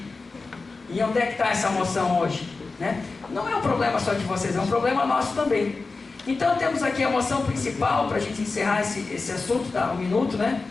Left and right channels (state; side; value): quieter; right; 3.9 dB